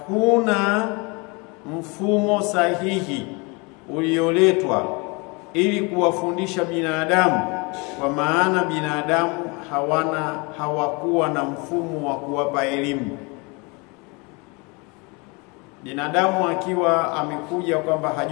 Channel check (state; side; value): quieter; right; 29.0 dB